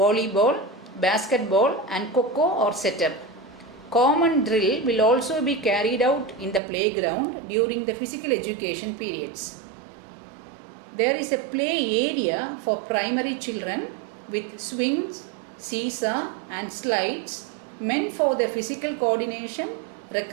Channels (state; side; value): drops out; left; at 6.6 s